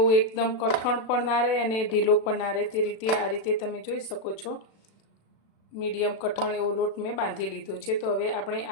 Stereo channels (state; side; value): late; right; 36 ms